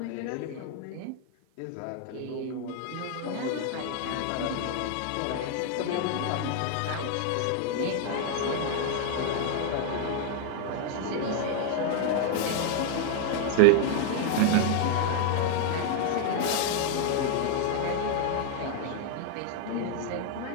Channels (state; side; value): different; both; correlation 0.00